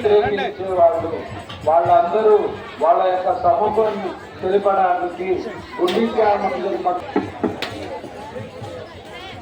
వాళ్ళందరూ వాళ్ళ యొక్క సముఖాన్ని తెలిపడానికి గుండీచా మందిర్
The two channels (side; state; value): both; identical; correlation 1.00